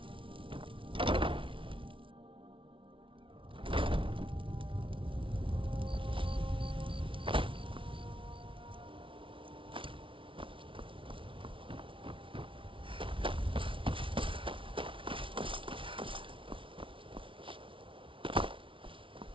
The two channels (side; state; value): left; late; 0.25 ms